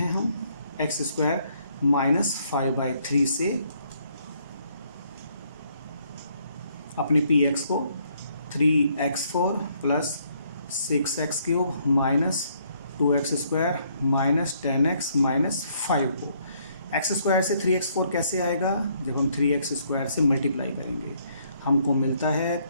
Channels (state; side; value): inverted; both; correlation -0.69